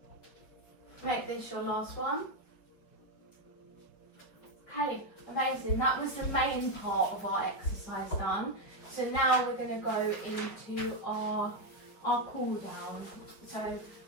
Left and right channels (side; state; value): right; late; 5.5 ms